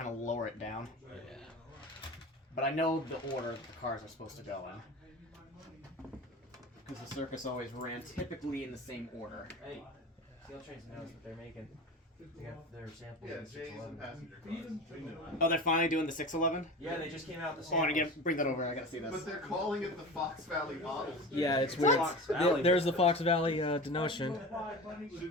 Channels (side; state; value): both; normal; correlation 0.32